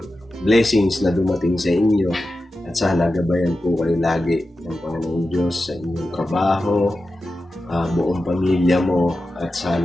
blessings na dumating sa inyo at sana gabayan po kayo lagi ng Panginoon Diyos sa inyong trabaho, buong pamilya mo at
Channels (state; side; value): normal; both; correlation 0.92